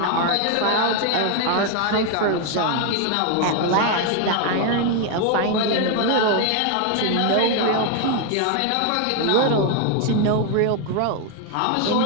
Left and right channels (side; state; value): both; different; correlation 0.01